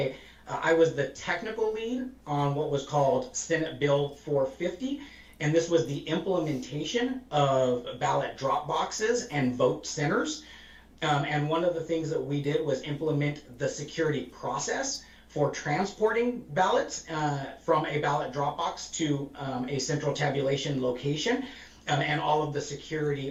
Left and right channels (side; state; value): both; identical; correlation 1.00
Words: I was the technical lead on what was called Senate Bill 450, and this was the implementation of ballot drop boxes and vote centers. And one of the things that we did was implement the security process for transporting ballots from a ballot drop box to a central tabulation location, and all of the